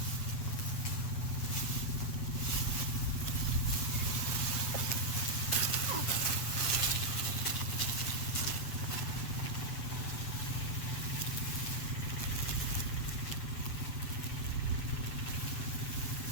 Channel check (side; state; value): right; late; 7.9 ms